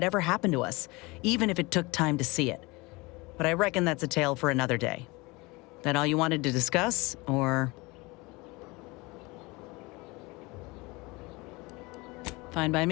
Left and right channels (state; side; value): quieter; right; 24.2 dB